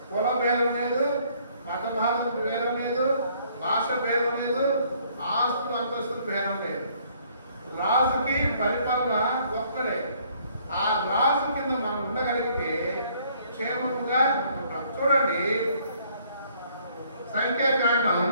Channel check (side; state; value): both; inverted; correlation -0.63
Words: కుల భేదం లేదు, మత భాష భేదం లేదు, భాష భేదం లేదు, ఆస్తులు అంతస్తులు భేదం లేదు. రాజుకి పరిపాలన ఒక్కడే. ఆ రాజు కింద మనం ఉండగలిగితే క్షేమంగా ఉంటాం. చూడండి సంఖ్యాకాండం